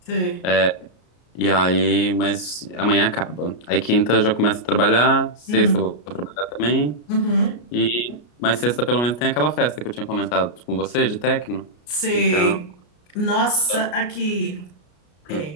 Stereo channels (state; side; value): late; right; 33 ms